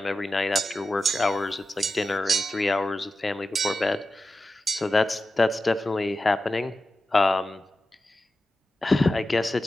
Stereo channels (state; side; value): normal; both; correlation 0.92